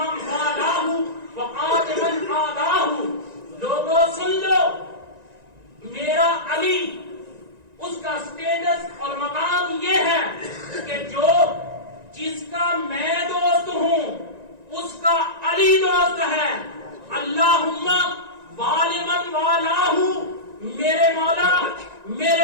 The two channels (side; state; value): left; late; 1.9 ms